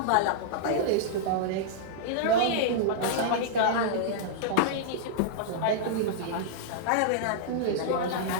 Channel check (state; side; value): different; both; correlation -0.02